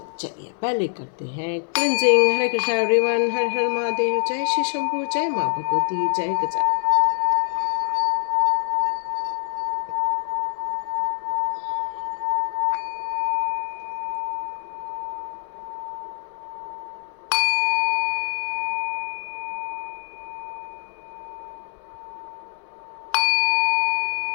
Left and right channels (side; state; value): right; silent; digital silence